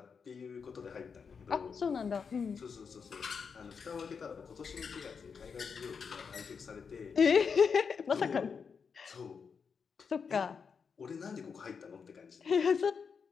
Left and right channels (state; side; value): quieter; right; 6.0 dB